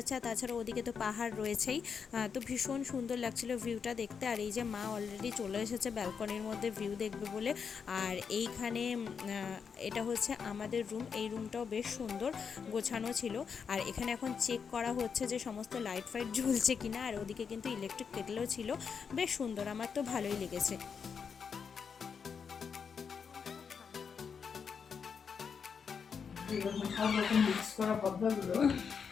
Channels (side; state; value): right; quieter; 6.3 dB